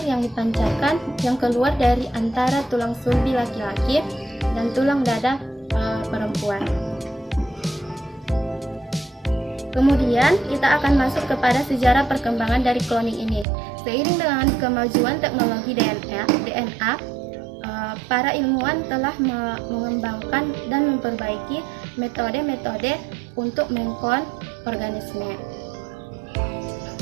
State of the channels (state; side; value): drops out; left; at 13.5 s